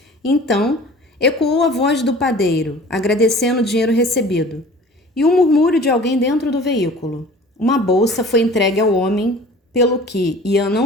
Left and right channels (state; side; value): normal; both; correlation 0.45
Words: Então, ecoou a voz do padeiro, agradecendo o dinheiro recebido, e um murmúrio de alguém dentro do veículo. Uma bolsa foi entregue ao homem, pelo que Ian